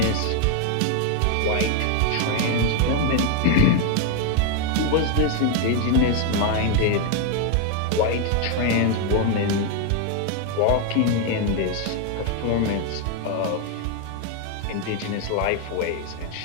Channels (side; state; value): both; different; correlation 0.01